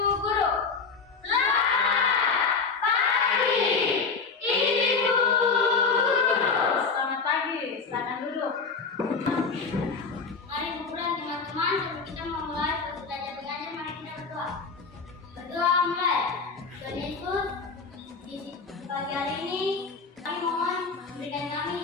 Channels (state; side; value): quieter; right; 4.9 dB